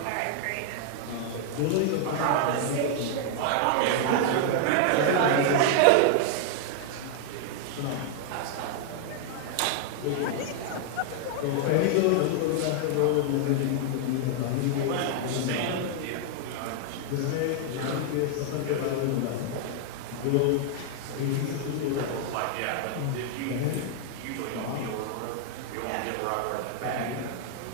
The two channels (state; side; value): different; both; correlation -0.01